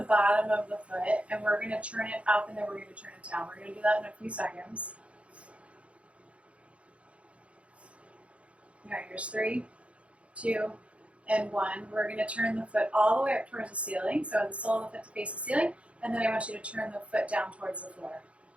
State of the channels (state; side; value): late; left; 0.062 ms